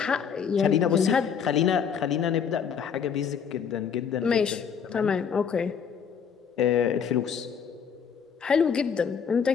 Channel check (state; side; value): quieter; right; 7.1 dB